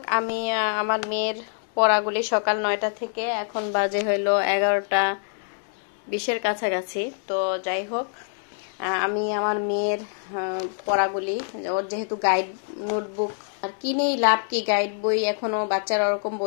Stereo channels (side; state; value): right; silent; digital silence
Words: আমি আমার মেয়ের পড়াগুলি সকাল 9টা থেকে এখন বাজে হইলো 11টা 20-এর কাছাকাছি। তো যাই হোক, আমি আমার মেয়ের পড়াগুলি, ওর যেহেতু গাইড নোটবুক আর কিনেই লাভ কি, গাইড বই এখনো বাচ্চারা ওরকম